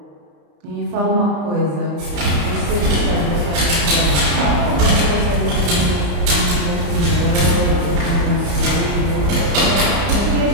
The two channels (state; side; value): late; left; 34 ms